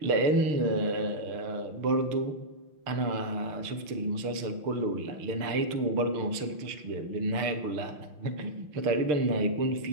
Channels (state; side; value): late; left; 6.7 ms